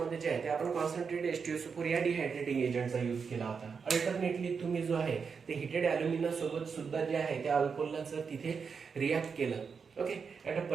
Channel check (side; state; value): left; quieter; 5.8 dB